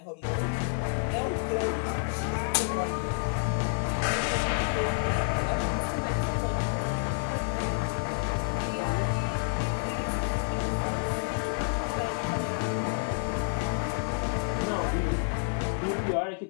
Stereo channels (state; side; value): silent; right; digital silence